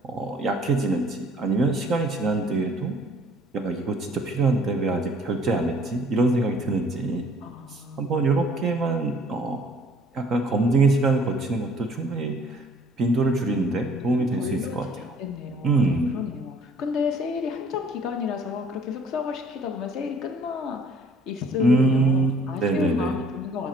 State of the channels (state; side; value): normal; both; correlation 0.57